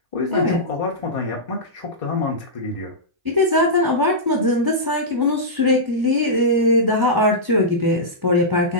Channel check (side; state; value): left; late; 1.3 ms